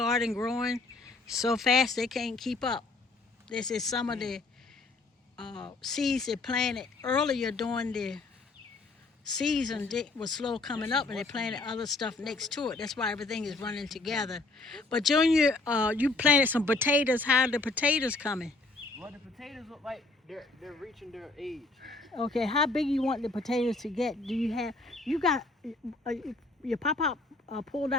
growing so fast they can't keep up. This is some of the seeds they planted earlier during the season. They was slow coming up and they planted other stuff next to it. That's why everything is running together. But Junior, you planted some potatoes. How are the potatoes coming? Well, the potatoes look like they're reaching their age. Okay, how big you want the potatoes to get? Do you have, you got, your pop pulled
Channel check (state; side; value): quieter; right; 3.4 dB